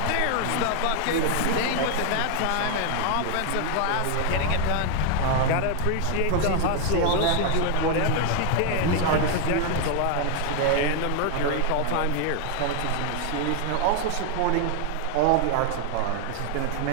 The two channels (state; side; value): different; both; correlation 0.00